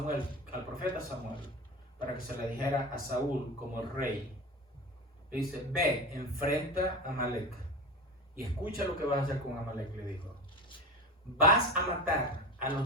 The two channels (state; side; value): normal; both; correlation 0.27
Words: al profeta Samuel, para que se le dijera a Saúl como el rey. Le dice: ve, enfrenta a Amalek y escucha lo que vas a hacer con Amalek. Le dijo: vas a matar a